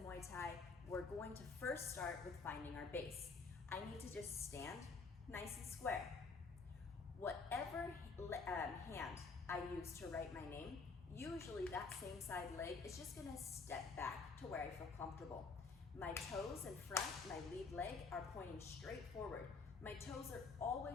Thai, we're going to first start with finding our base. I need to just stand nice and square. Whatever hand I use to write my name, usually that same side leg is just gonna step back to where I feel comfortable. My toes in front, my lead leg, are pointing straight forward. My toes are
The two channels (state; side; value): quieter; right; 4.5 dB